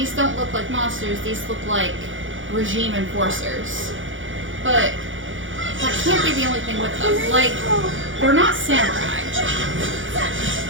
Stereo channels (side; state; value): left; late; 0.57 ms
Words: don't look like monsters, these look like regime enforcers. But that can't be the only thing with them. Like, they're not samurai.